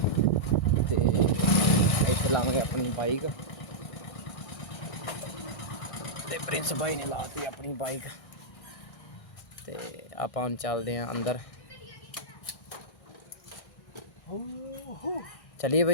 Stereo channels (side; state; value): right; late; 1.6 ms